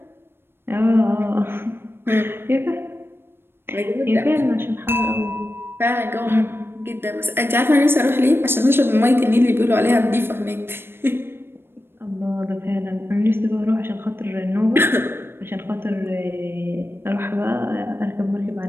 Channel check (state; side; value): late; left; 0.11 ms